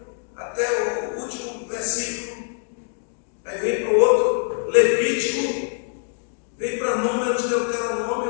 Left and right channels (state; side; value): silent; right; 63 dB below the other